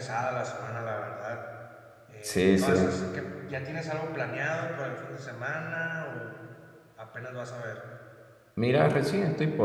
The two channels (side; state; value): both; identical; correlation 1.00